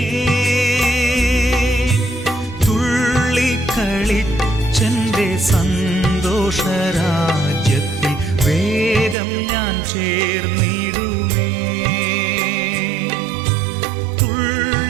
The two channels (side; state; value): left; drops out; at 9.2 s